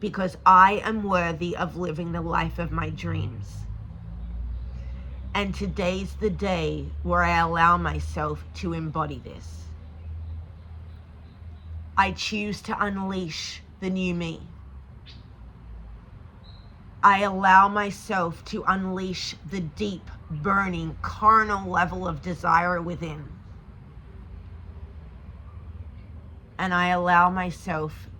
Because I am worthy of living the life of my dreams. And today's the day where I allow myself to embody this. I choose to unleash the new me. I allow myself to unleash the deep, burning, carnal level of desire within. And I allow myself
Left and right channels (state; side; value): identical; both; correlation 1.00